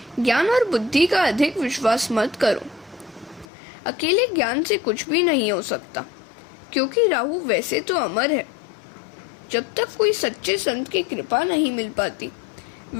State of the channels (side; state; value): right; drops out; at 3.5 s